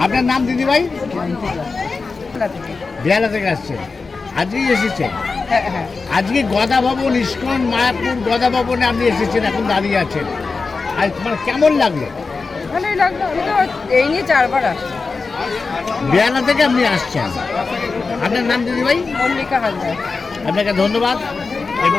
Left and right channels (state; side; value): quieter; right; 4.3 dB